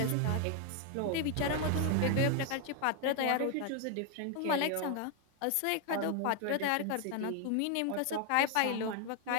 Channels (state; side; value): different; both; correlation 0.00